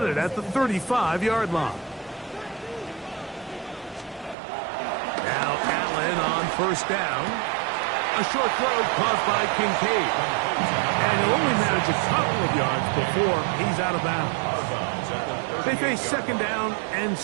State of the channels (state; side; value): drops out; left; at 4.4 s